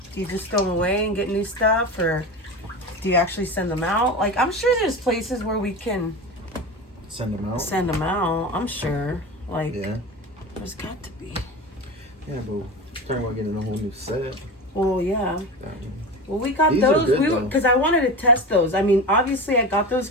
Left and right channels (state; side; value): normal; both; correlation 0.27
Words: do you just throw them away and get new stuff? Or do you actually send them out? Like, I'm sure there's places where we can Send them out? send them out. I'm sure. Like, Yeah. there's got to be. Yeah, but talking about getting a whole new set. Well, yeah. Well, we got These are those good, because I wanted to test those. I mean, obviously I got those